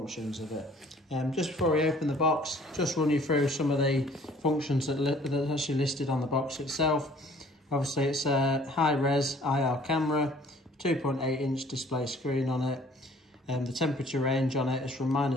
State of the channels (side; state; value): both; normal; correlation 0.55